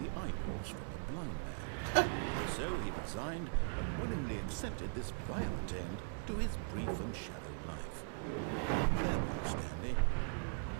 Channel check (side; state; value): left; silent; digital silence